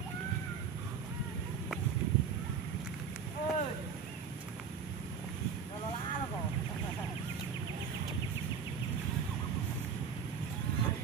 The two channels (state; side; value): quieter; left; 6.3 dB